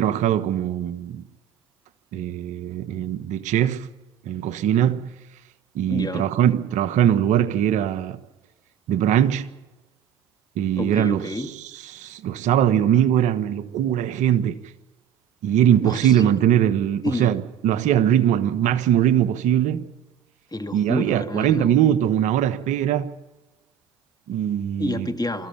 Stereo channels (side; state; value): left; quieter; 9.3 dB